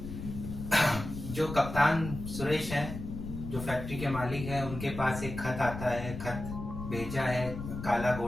जो कप्तान सुरेश हैं, जो फैक्ट्री के मालिक हैं, उनके पास एक खत आता है। खत भेजा है काला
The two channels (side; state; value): left; noise; rumble, 8 dB below the sound